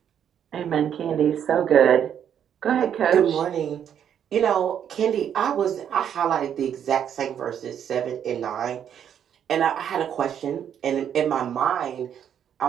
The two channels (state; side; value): quieter; left; 9.0 dB